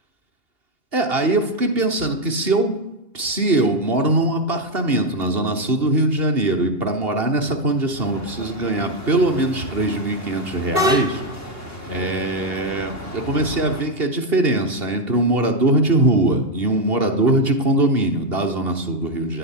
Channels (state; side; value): late; left; 2.8 ms